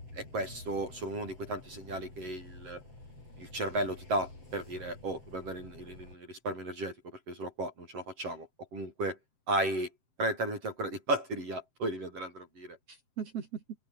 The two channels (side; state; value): left; late; 7.7 ms